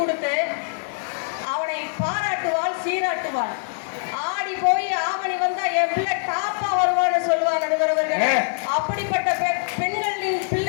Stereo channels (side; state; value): right; silent; 63 dB below the other